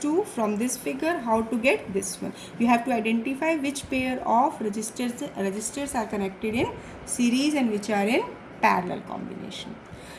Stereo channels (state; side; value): identical; both; correlation 1.00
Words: from this figure, how to get this one. You have to identify which pair of resistors are connected in series and which are in parallel combination.